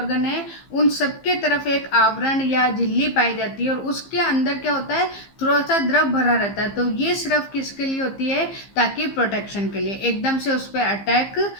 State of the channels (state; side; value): late; right; 15 ms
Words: हैं उन सबके तरफ एक आवरण या झिल्ली पाई जाती है, और उसके अंदर क्या होता है, थोड़ा सा द्रव भरा रहता है। तो ये सिर्फ किसके लिए होती है, ताकि प्रोटेक्शन के लिए, एकदम से उस पर अटैक